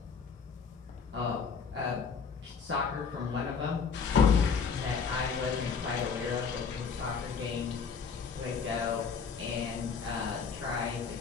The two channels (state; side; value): quieter; right; 5.8 dB